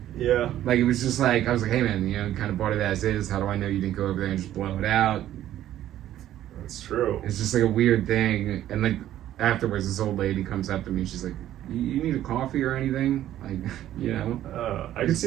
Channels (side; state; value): left; quieter; 12.5 dB